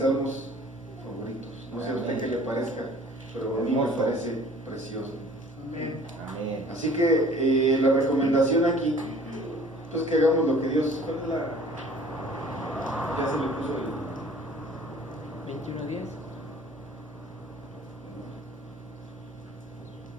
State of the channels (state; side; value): normal; both; correlation 0.50